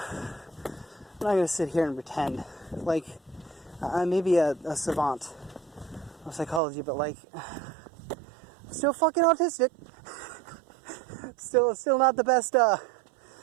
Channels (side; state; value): left; drops out; at 6.6 s